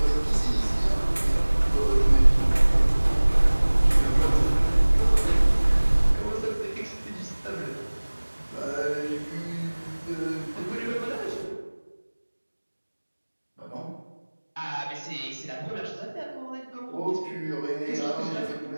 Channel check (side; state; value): both; inverted; correlation -1.00